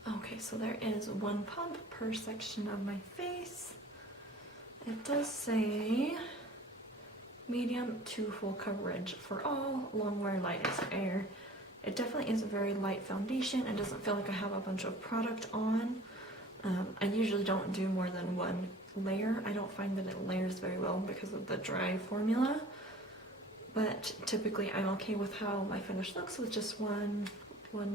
Okay, so there is one pump per section of my face. It does say medium to full coverage for all, Longwear light as air. It definitely is a very light foundation. It doesn't feel like I have a bunch of product on. I usually don't do more than one layer. I don't find that it layers very well because of the dry formula, but typically I'm okay with how my finish looks with just one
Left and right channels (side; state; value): both; normal; correlation 0.46